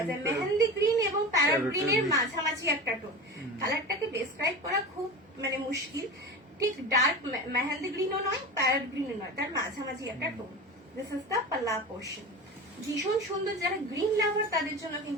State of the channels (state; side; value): normal; both; correlation 0.29